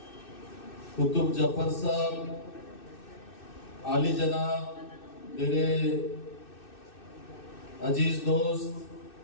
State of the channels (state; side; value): late; right; 2.6 ms